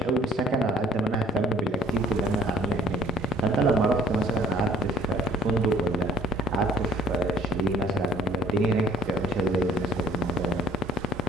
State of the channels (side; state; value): both; normal; correlation 0.56